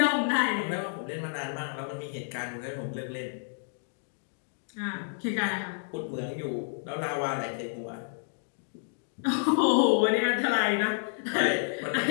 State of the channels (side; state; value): right; silent; 56 dB below the other